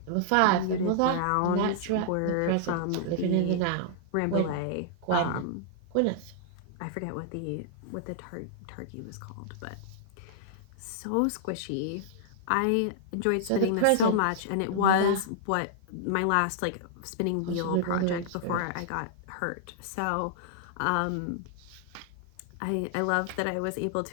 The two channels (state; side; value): different; both; correlation -0.01